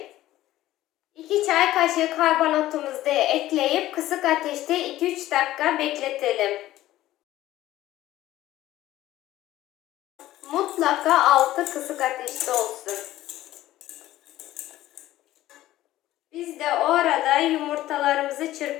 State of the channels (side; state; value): right; quieter; 14.9 dB